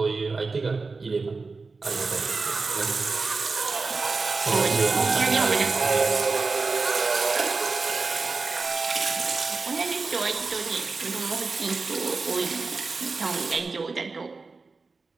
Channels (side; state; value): left; quieter; 4.1 dB